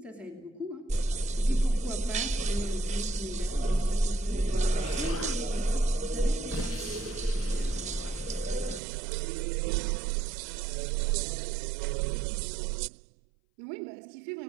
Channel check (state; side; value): drops out; left; at 8.8 s